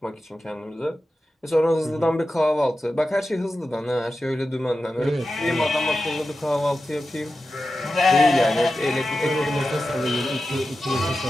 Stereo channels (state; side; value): normal; both; correlation 0.93